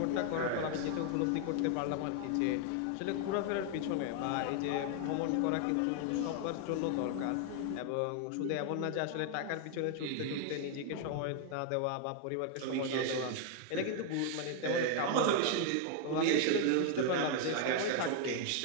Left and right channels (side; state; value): both; different; correlation 0.00